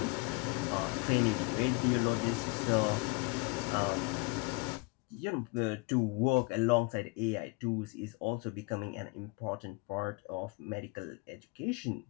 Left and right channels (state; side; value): quieter; right; 28.0 dB